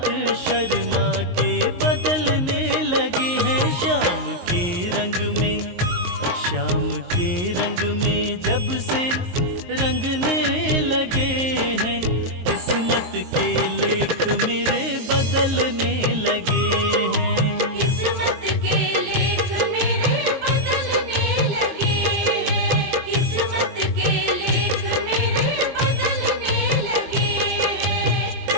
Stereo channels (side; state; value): left; late; 23 ms